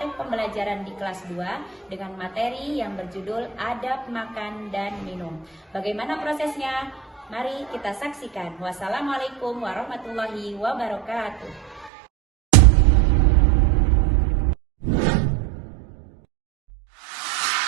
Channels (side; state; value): left; drops out; at 11.9 s